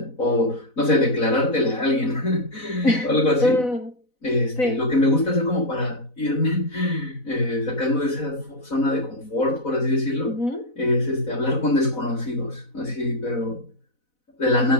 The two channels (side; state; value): right; late; 4.0 ms